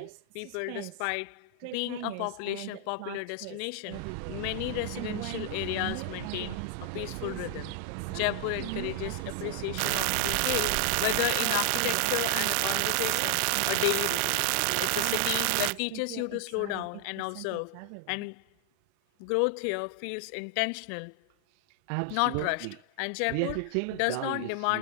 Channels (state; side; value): different; both; correlation 0.00